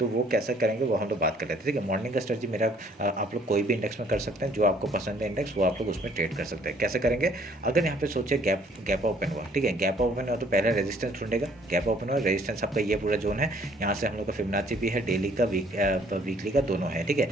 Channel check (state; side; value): normal; both; correlation 0.61